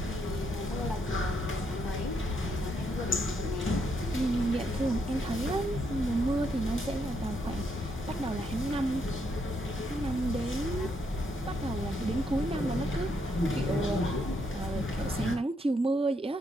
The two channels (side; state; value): both; normal; correlation 0.76